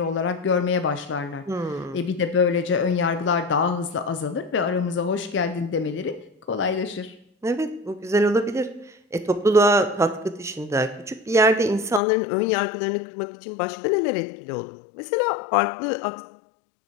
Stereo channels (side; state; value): right; drops out; at 12.0 s